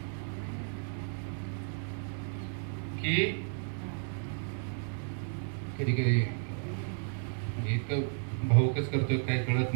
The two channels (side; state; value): left; silent; 55 dB below the other